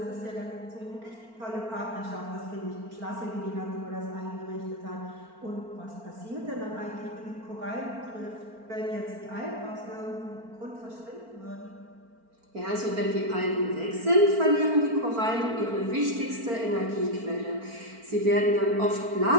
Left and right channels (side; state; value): left; late; 4.4 ms